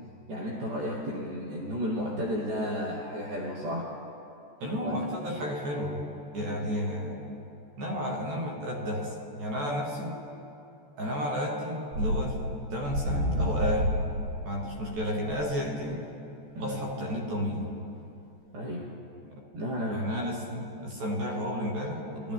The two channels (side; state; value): left; late; 14 ms